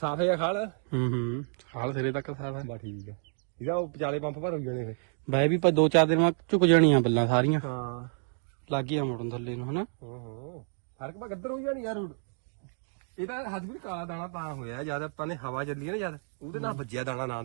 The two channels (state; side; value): silent; left; 58 dB below the other